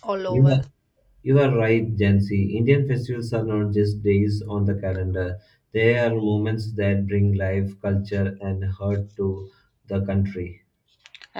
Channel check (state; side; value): identical; both; correlation 1.00